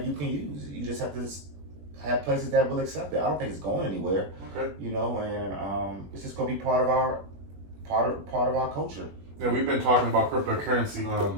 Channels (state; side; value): late; left; 21 ms